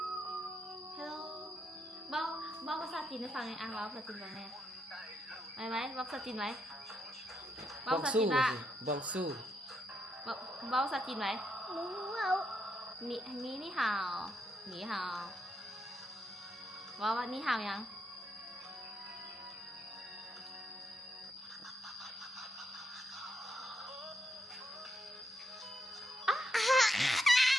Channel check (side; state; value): both; normal; correlation 0.80